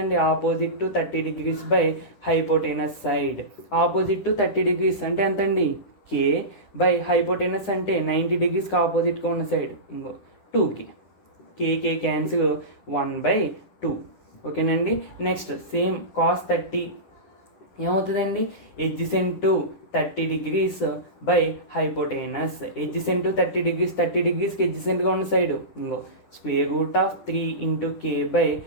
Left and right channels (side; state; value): right; late; 9.8 ms